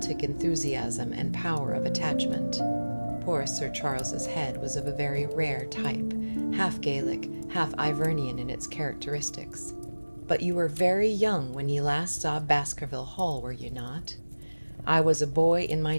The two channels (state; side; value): inverted; both; correlation -1.00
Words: enthusiasm and power of attachment. Poor Sir Charles's head was of a very rare type, half Gaelic, half Ivernian in its characteristics. But you were very young when you last saw Baskerville Hall, were you not? I was a boy in